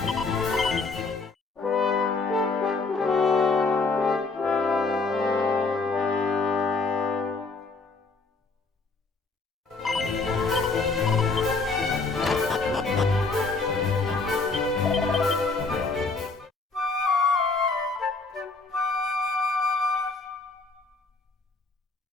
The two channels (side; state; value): right; quieter; 3.9 dB